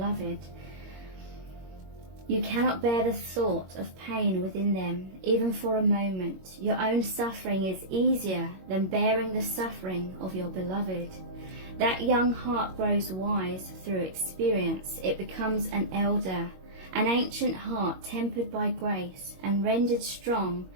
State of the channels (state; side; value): late; left; 21 ms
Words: You cannot bear the thought of pain within them, even for a moment. Your own suffering is easier than bearing the suffering of your beloved. That young heart grows wise through experience. It becomes an elder, an ancient heart tempered by grace and rendered strong